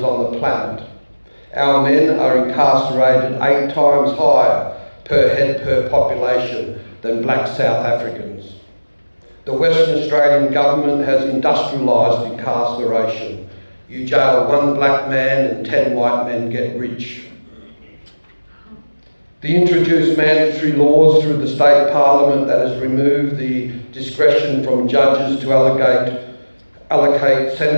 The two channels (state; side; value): inverted; both; correlation -1.00